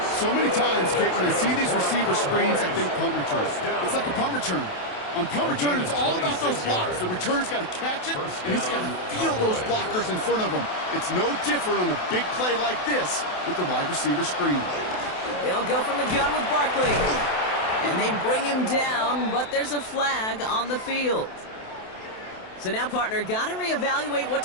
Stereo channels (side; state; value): right; late; 28 ms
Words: So many times, Kate, when I see these receiver screens, I think punt return. It's like a punt return. On punt return, it's all about those blocks. The returner's got to catch it, and he's got to feel those blockers in front of him. It's no different on a big play like this with the wide receiver screen. They'll go from the gun with Barkley. And they bring him down, but there's a flag on the field. So now, partner, got to reevaluate what